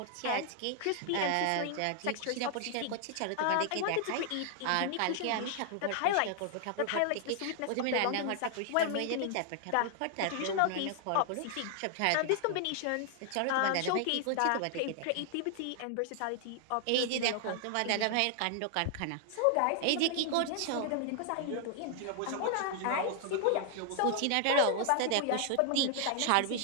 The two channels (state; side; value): different; both; correlation 0.00